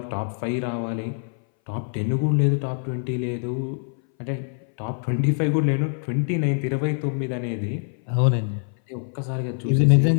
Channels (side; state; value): right; silent; 60 dB below the other